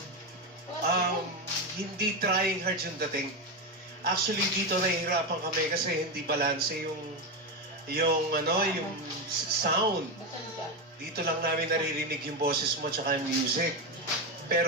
hindi trying hard yung dating. Actually, dito nahihirapan kami kasi hindi balanse yung sound. Dito lang namin naririnig yung boses mo tsaka yung music.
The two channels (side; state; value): both; normal; correlation 0.13